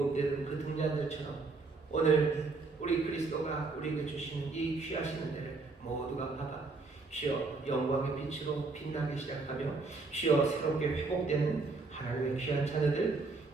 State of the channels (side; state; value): left; quieter; 3.9 dB